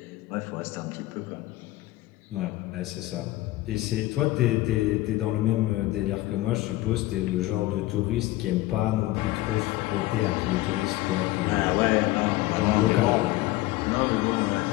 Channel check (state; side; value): quieter; right; 17.7 dB